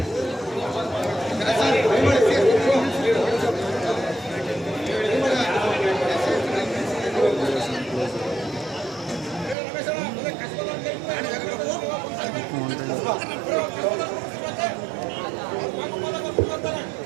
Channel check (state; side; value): drops out; left; at 9.6 s